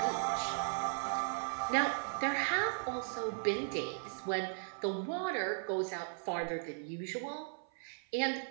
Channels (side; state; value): left; silent; 53 dB below the other